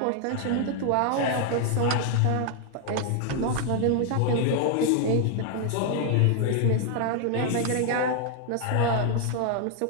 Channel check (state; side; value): different; both; correlation 0.00